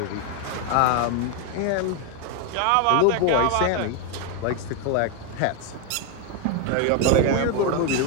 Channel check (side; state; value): both; different; correlation 0.01